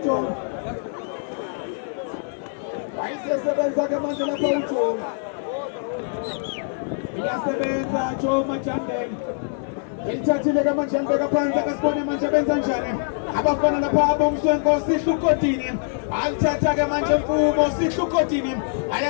wayisebenza ke manje lapha uJomo iyasebenza Jomo Majambe elithathile ke manje ambeka phansi akasibone manje benza njani abafana lapha abomswenko sihlukotini alithatha ke manje Mfumo sihlukotini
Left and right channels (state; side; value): silent; right; digital silence